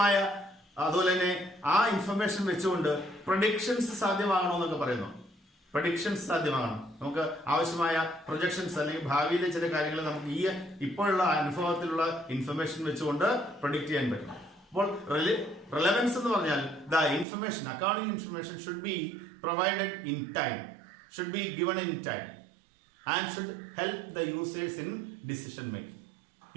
അതുപോലെ തന്നെ ആ ഇൻഫർമേഷൻ വെച്ചുകൊണ്ട് പ്രൊഡിക്ഷൻസ് സാധ്യമാകണമെന്നൊക്കെ പറയുന്നു. പ്രൊഡിക്ഷൻസ് സാധ്യമാകണം, നമുക്ക് ആവശ്യമായ പ്രൊജക്ഷൻസ് അല്ലെങ്കിൽ ഭാവിയിലെ ചില കാര്യങ്ങൾ നമുക്ക് ഈ ഇപ്പോഴുള്ള അനുഭവത്തിലുള്ള ഇൻഫർമേഷൻ വെച്ചുകൊണ്ട് പ്രൊഡിക്റ്റ് ചെയ്യാൻ പറ്റണം. അപ്പോൾ റെലവൻസ് എന്ന് പറഞ്ഞാൽ the information, accounting information should be provided in time, should be given in time and should help the users in decision making.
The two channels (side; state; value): left; drops out; at 17.2 s